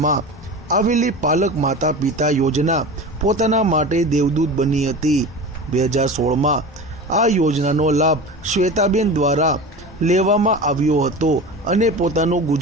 આવેલી પાલક માતા પિતા યોજના પોતાના માટે દેવદૂત બની હતી। 2016માં આ યોજનાનો લાભ શ્વેતાબેન દ્વારા લેવામાં આવ્યો હતો અને પોતાનું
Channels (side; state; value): both; normal; correlation 0.31